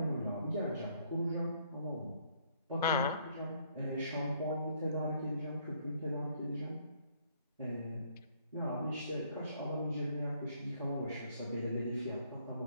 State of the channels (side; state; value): both; inverted; correlation -0.66